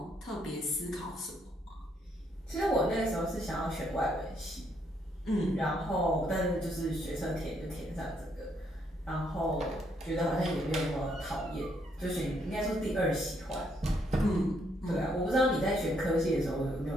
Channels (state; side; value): normal; both; correlation 0.73